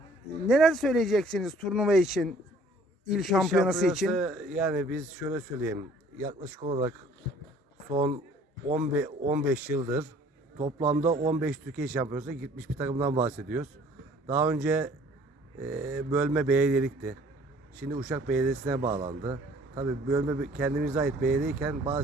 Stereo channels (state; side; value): normal; both; correlation 0.55